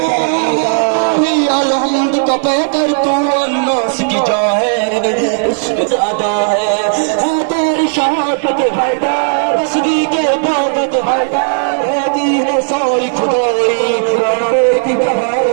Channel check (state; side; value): silent; left; digital silence